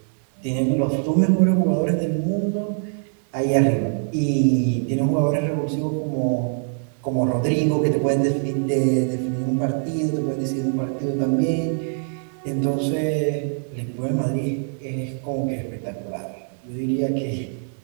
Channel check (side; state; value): left; silent; 63 dB below the other